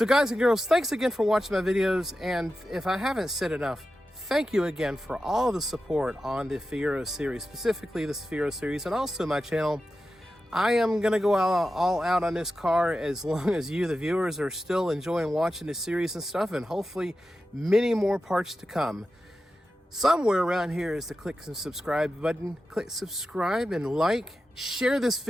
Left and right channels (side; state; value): both; normal; correlation 0.92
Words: guys and girls, thanks again for watching my videos. And if I haven't said enough, thank you again for all the support on the Fiero series, specifically this Fiero series, and also my channel. I am going to go all out on this car as long as you, the viewers, are still enjoying watching the series and stuff, and hopefully many more parts to come. Somewhere around here is the click and subscribe button. Click subscribe and like. Share this